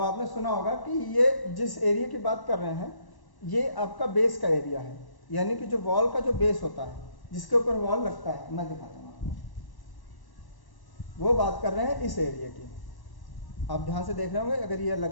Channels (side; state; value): right; late; 1.0 ms